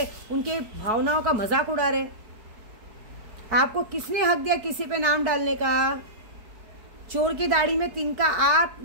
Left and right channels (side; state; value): left; late; 4.7 ms